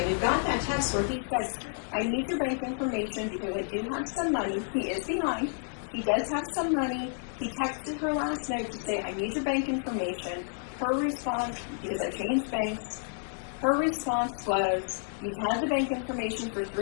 we've got that text where he said, I need your bank information because I do have some money. He is behind. He does have some money. He texted her last night to say, I need your bank information. Her response, because I changed banks, her response was, you've had the bank information for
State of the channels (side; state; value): right; silent; digital silence